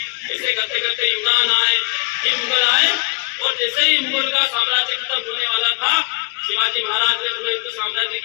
ऐसे करते करते यूनान आए, फिर मुगल आए और जैसे ही मुगल का साम्राज्य खत्म होने वाला था शिवाजी महाराज ने पुनः हिंदू साम्राज्य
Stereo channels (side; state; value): right; quieter; 29.2 dB